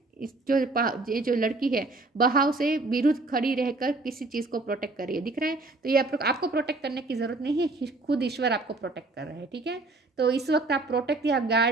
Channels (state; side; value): quieter; left; 3.3 dB